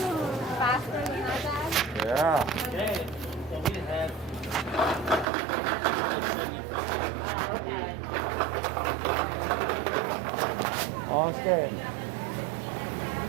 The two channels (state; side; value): drops out; left; at 5.2 s